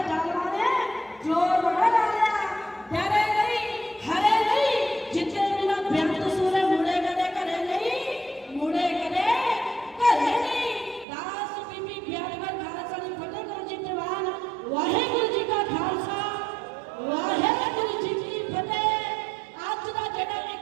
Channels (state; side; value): drops out; left; at 11.1 s